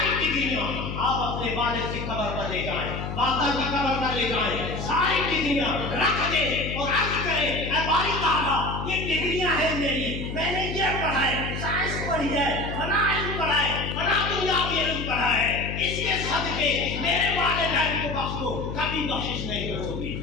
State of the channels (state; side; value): noise; left; hum, 6 dB below the sound